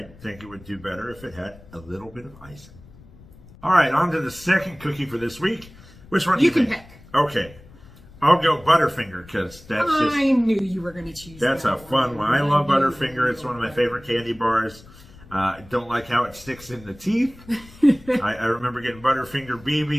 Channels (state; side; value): noise; left; rumble, 22 dB below the sound